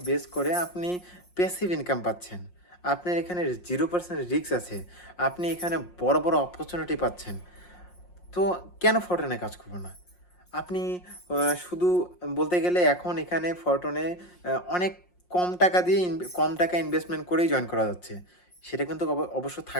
বেস করে আপনি প্যাসিভ ইনকাম পাচ্ছেন। আপনার এখানে 0% রিস্ক আছে। আপনি এখানে বড়, বড় অপরচুনিটি পাচ্ছেন। তো কেন ফরটনে কাজ করব না? আপনি শুধু বলতে গেলে এখন এখানে ফরটনে অনেক কম টাকা ইনভেস্টমেন্ট করেই জয়েন করা যাচ্ছে। সেটা কিন্তু অবশ্য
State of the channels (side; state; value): right; late; 5.6 ms